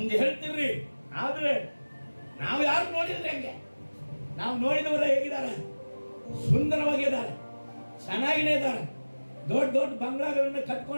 ಹೇಳ್ತಿರ್ರಿ. ಆದ್ರೆ ನಾವು ಯಾರು ನೋಡಿದ್ರೆ ಹೆಂಗೆ? ನಾವು ನೋಡಿದವರ ಹೇಗಿದ್ದಾರೆ? ಸುಂದರವಾಗಿದ್ದಾರೆ, ಚೆನ್ನಾಗಿನೇ ಇದ್ದಾರೆ, ದೊಡ್ಡ ದೊಡ್ಡ ಬಂಗ್ಲಾಗಳನ್ನು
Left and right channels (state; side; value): inverted; both; correlation -1.00